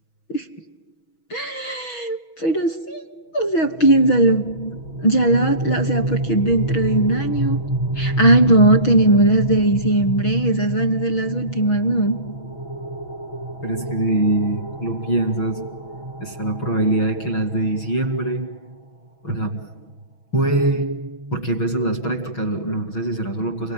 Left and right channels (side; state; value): right; late; 6.2 ms